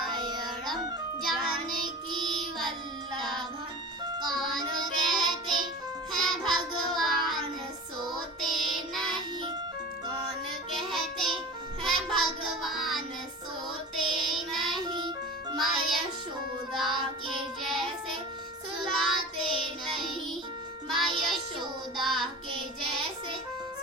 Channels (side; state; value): both; normal; correlation 0.34